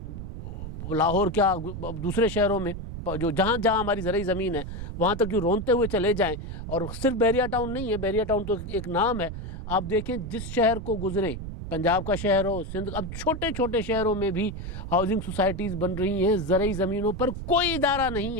लाहौर क्या दूसरे शहरों में जो जहाँ जहाँ हमारी ज़रई ज़मीन है वहाँ तक यूँ रोंदते हुए चले जाएं। और सिर्फ बहरिया टाउन नहीं है, बहरिया टाउन तो एक नाम है। आप देखें जिस शहर को गुज़रें, पंजाब का शहर हो, सिंध, अब छोटे छोटे शहरों में भी हाउसिंग सोसाइटीज़ बन रही हैं ज़रई ज़मीनों पर। कोई इदारा नहीं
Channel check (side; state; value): right; noise; rumble, 8 dB below the sound